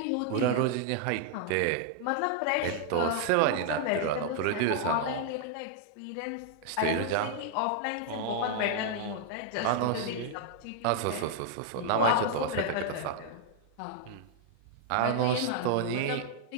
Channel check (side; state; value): both; different; correlation -0.01